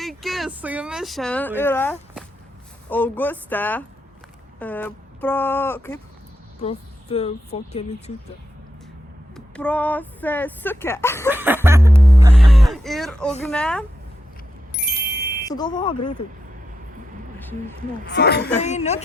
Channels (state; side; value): normal; both; correlation 0.85